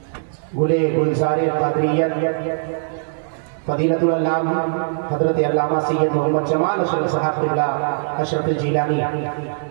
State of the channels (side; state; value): left; silent; 55 dB below the other